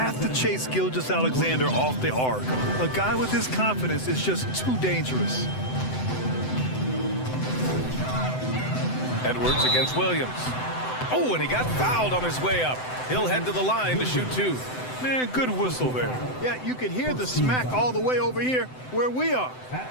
to chase Gilgeous-Alexander off the arc. A guy with his confidence is just too dangerous. Edwards against Williams. Oh, and he got fouled on his way up. He'll head to the line to shoot two. Man, good whistle there. Yeah, you could hear the smack all the way over here where we are.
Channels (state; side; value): late; right; 7.9 ms